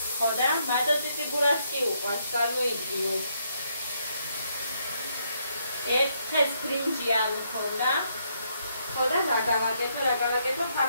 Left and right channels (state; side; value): inverted; both; correlation -0.74